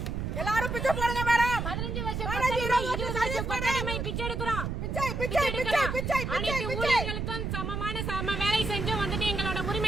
எல்லாரும் பிச்சை போடுங்க மேடம். 15 வருஷம் 20 வருஷம் கொத்தடிமை பிச்சை எடுக்கிறோம். பிச்சை பிச்சை பிச்சை பிச்சை அனைத்து ஊழியர்களுக்கும் சம வேலை செஞ்சு வந்துட்டு எங்களோட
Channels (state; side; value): noise; right; rumble, 3 dB below the sound